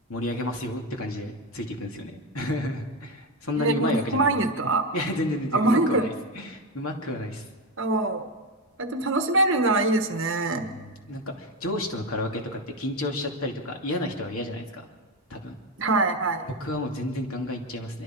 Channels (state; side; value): normal; both; correlation 0.14